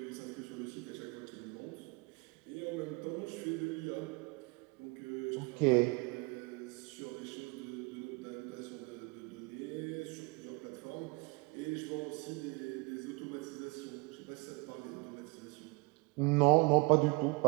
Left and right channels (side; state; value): left; quieter; 27.9 dB